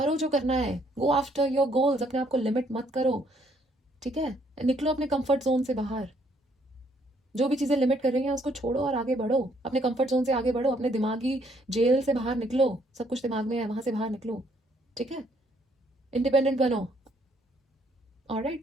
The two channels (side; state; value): both; normal; correlation 0.68